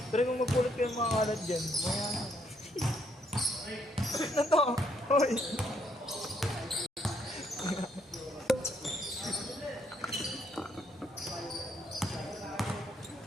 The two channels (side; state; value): both; normal; correlation 0.72